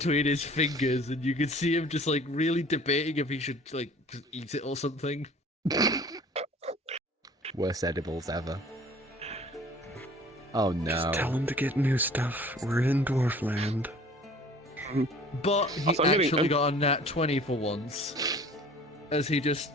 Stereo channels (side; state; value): both; normal; correlation 0.48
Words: his fingers, and you can see him just like really debating if he should like just eat it or something. Worst edibles ever. Oh no. Just tell him to get new stuff. We're in Dwarfland. But he Also, I'm actually getting- got a nat 20 for once, as he